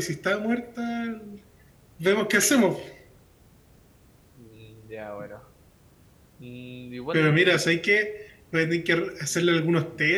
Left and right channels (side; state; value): both; identical; correlation 1.00